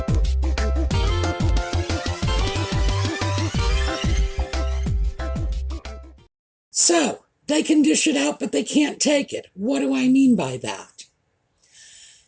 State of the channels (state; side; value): identical; both; correlation 1.00